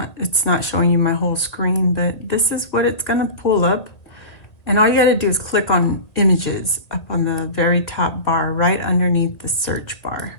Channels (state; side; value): late; right; 1.5 ms